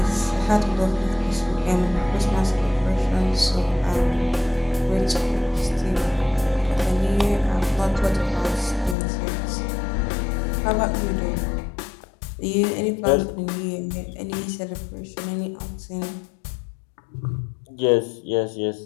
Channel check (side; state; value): right; drops out; at 9.0 s